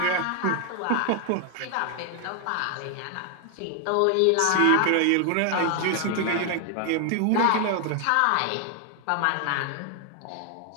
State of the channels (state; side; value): different; both; correlation 0.00